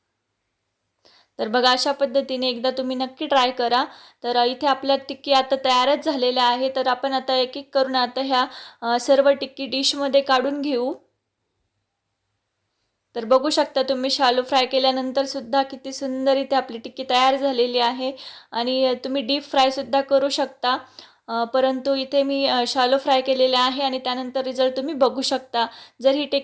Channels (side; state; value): both; identical; correlation 1.00